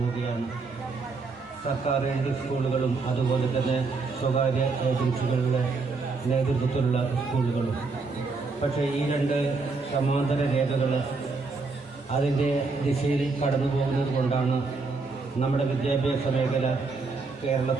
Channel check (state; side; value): quieter; left; 4.1 dB